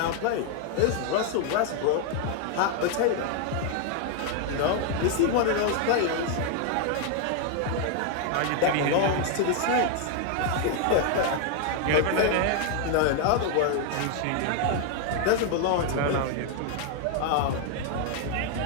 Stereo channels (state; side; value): different; both; correlation 0.00